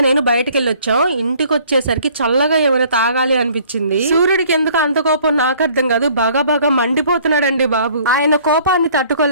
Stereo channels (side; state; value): both; inverted; correlation -0.56